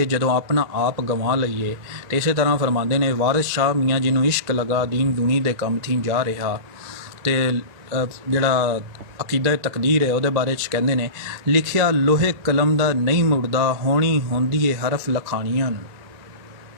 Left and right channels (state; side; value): late; left; 2.0 ms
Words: ਜਦੋਂ ਆਪਣਾ ਆਪ ਗਵਾ ਲਈਏ। ਅਤੇ ਇਸੇ ਤਰ੍ਹਾਂ ਫਰਮਾਉਂਦੇ ਨੇ, ਵਾਰਿਸ ਸ਼ਾਹ ਮੀਆਂ ਜਿਹਨੂੰ ਇਸ਼ਕ ਲਗਾ ਦੀਨ ਦੁਨੀ ਦੇ ਕੰਮ ਥੀ ਜਾ ਰਿਹਾ। ਅਤੇ ਜਿਹੜਾ ਅਕੀਦਾ ਤਕਦੀਰ ਹੈ ਉਹਦੇ ਬਾਰੇ 'ਚ ਕਹਿੰਦੇ ਨੇ, ਲਿਖਿਆ ਲੋਹੇ ਕਲਮ ਦਾ ਨਹੀਂ ਮੁੜਦਾ, ਹੋਣੀ ਹੁੰਦੀ ਏ ਹਰਫ ਲਖਾਣੀਆਂ ਨੂੰ।